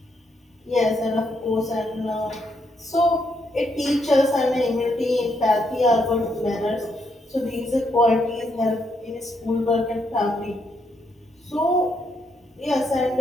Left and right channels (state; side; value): normal; both; correlation 0.77